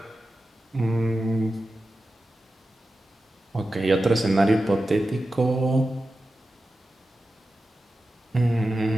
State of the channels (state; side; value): normal; both; correlation 0.93